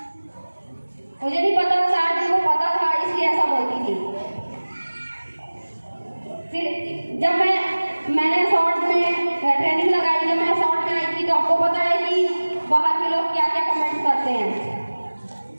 मुझे नहीं पता, शायद उनको पता था इसलिए ऐसा बोलती थी। फिर जब मैंने शॉर्ट में ट्रेनिंग लगाई, जब मैं शॉर्ट में आई थी, तो आपको पता है कि बाहर के लोग क्या क्या कमेंट करते हैं।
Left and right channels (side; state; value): both; inverted; correlation -1.00